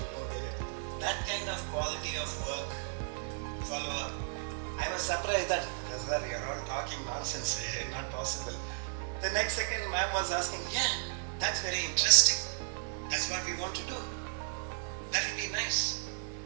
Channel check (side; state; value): left; silent; digital silence